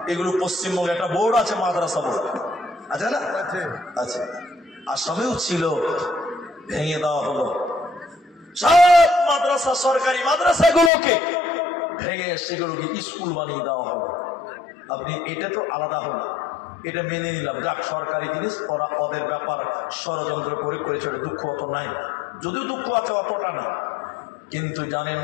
এগুলো পশ্চিমবঙ্গে একটা বোর্ড আছে, মাদ্রাসা বোর্ড আছে না? আচ্ছা, আসামেও ছিল, ভেঙে দেওয়া হলো। সব মাদ্রাসা, সরকারি মাদ্রাসাগুলোকে ভেঙে সেগুলোকে স্কুল বানিয়ে দেওয়া হলো। আপনি এটা তো আলাদা হলো, এটা মেনে নিলাম, যাক সরকারি জিনিস, ওরা ওদের ব্যাপার ষড়যন্ত্র করে করেছে, দুঃখ অত নাই, যদিও দুঃখ আছে অতটা না। কিন্তু জানেন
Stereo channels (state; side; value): drops out; right; at 10.9 s